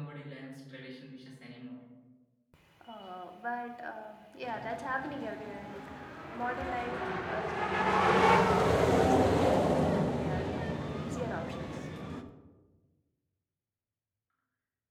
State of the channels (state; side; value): identical; both; correlation 1.00